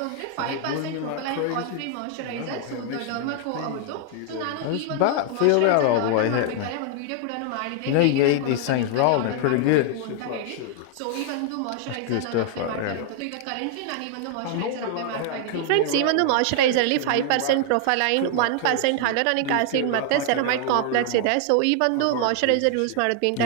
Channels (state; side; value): different; both; correlation 0.00